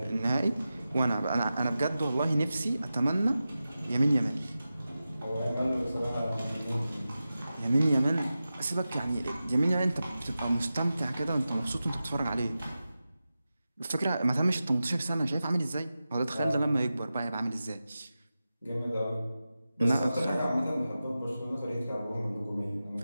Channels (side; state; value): both; inverted; correlation -0.93